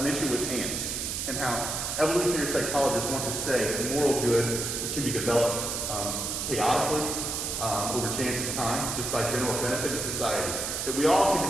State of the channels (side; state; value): right; noise; hiss, 2 dB below the sound